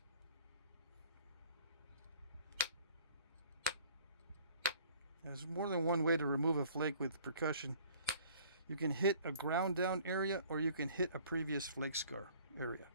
There's more than one way to remove a flake with percussion. You can hit a ground down area, or you can hit a previous flake scar area.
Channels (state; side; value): inverted; both; correlation -0.54